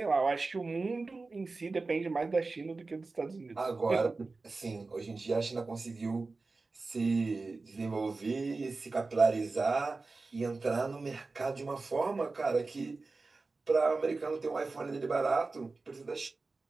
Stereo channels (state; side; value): quieter; left; 3.7 dB